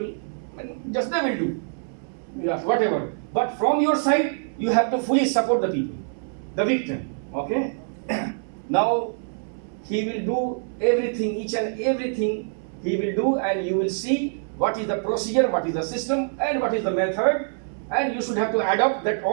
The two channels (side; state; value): left; silent; digital silence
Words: just they will do. Yeah, whatever. But from your side, you have to fully support the people, the victim. Okay? Now, he will do everything, each and everything he will do, and you will see what is the procedure, what is the system, and what is the method. And you should have to adopt that